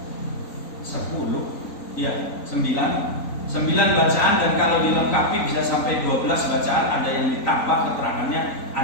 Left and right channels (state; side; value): late; right; 3.9 ms